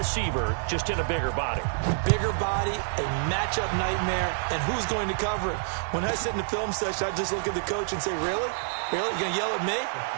just in a bigger body. Bigger body, a matchup nightmare, and who's going to cover it? When I sit in the film session, I just look at the coach and say, really? Really? You're going to yell at me?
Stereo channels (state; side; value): silent; left; digital silence